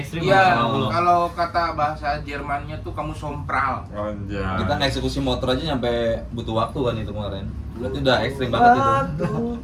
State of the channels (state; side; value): identical; both; correlation 1.00